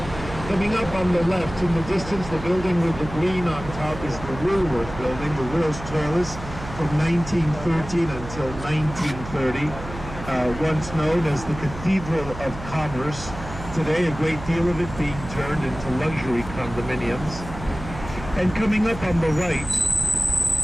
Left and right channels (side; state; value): right; noise; hum, 12 dB below the sound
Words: Coming up on the left, in the distance, the building with the green on top is the Woolworth Building, the world's tallest, from 1913 until 1930. Once known as the Cathedral of Commerce. Today, a great deal of it being turned into luxury condominiums. And coming up on the right,